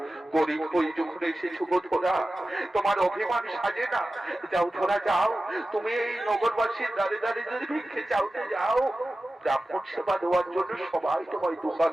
গরিব হই যখন এসেছো গো ধরা, তোমার অভিমান সাজে না। যাও ধরা যাও, তুমি এই নগরবাসীর দাঁড়িয়ে দাঁড়িয়ে যদি ভিক্ষে চাওতে যাও, ব্রাহ্মণ সেবা দেওয়ার জন্য সবাই তোমায় 2 হাত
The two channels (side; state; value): both; normal; correlation 0.95